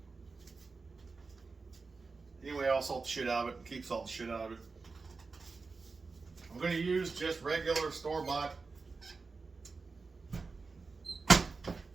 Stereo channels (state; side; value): quieter; left; 4.3 dB